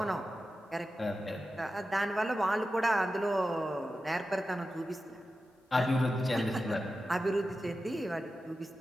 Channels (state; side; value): normal; both; correlation 0.92